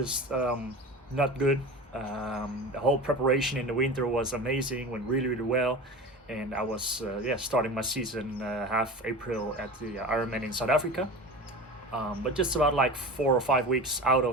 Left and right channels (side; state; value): both; normal; correlation 0.32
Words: not good. The whole preparation in the winter was amazing, went really really well, and I was starting my season half April at the Ironman in South Africa. But just about like 4 or 5 weeks out